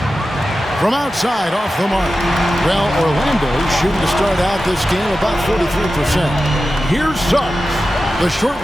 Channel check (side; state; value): both; normal; correlation 0.93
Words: From outside, off the mark. Well, Orlando shooting to start out this game about 43%. Here's Suggs. The short